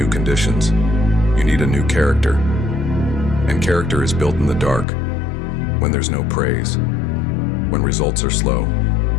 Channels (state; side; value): drops out; right; at 4.9 s